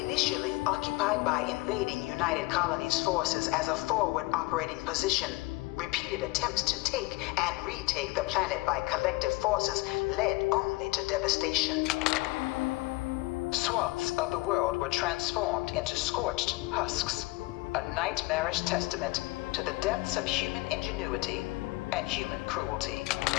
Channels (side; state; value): right; quieter; 22.4 dB